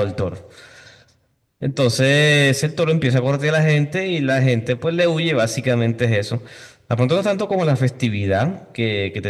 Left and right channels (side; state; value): both; identical; correlation 1.00